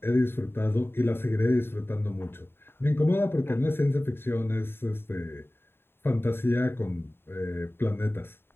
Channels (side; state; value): right; late; 0.11 ms